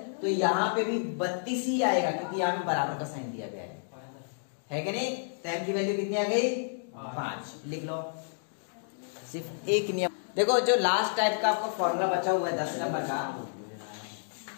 तो यहाँ पे भी 32 ही आएगा, क्योंकि यहाँ पे बराबर का साइन दिया गया है कि नहीं? तो m की वैल्यू कितनी आ गई? 5। लिख लो। सिर्फ एक नियम देखो, जो लास्ट टाइप का आपको फॉर्मूला बचा हुआ है 10 नंबर का,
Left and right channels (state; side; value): silent; right; digital silence